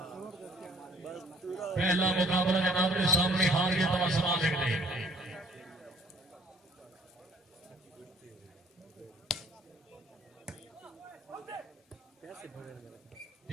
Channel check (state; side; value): normal; both; correlation 0.58